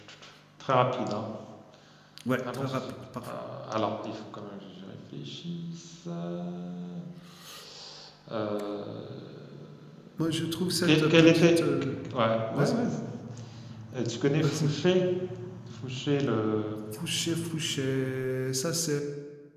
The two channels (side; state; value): both; identical; correlation 1.00